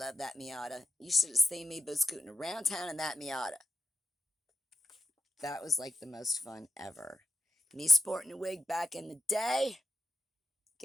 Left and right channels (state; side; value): normal; both; correlation 0.86